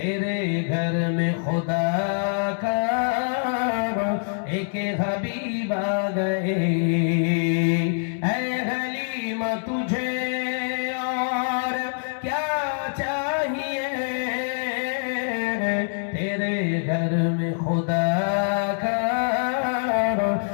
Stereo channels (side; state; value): right; silent; 62 dB below the other